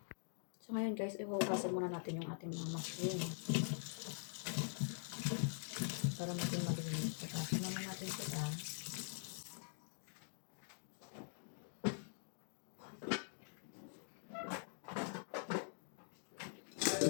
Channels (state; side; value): silent; right; digital silence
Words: So, ngayon guys, ihugasan muna natin yung ating mga mushroom para maging malinis. So, simulan natin sila.